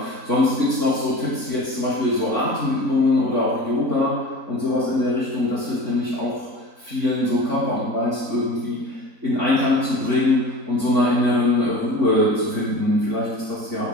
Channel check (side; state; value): left; late; 3.9 ms